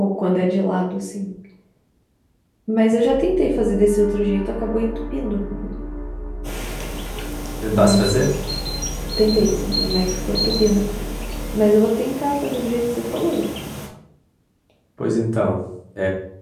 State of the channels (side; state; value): both; identical; correlation 1.00